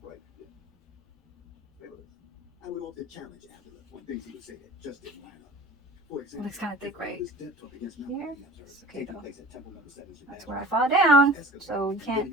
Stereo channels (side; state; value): both; normal; correlation 0.42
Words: it looks kind of thick right here. It's okay though. That's where I fall down. So y'all